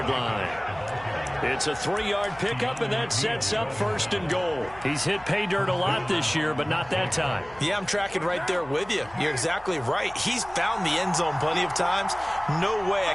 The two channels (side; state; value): left; noise; hum, 22 dB below the sound